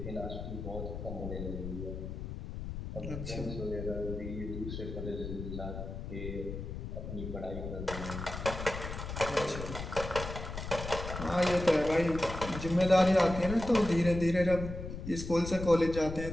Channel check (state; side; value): noise; left; rumble, 7 dB below the sound